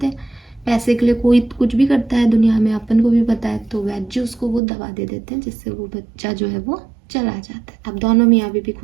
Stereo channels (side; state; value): left; drops out; at 4.6 s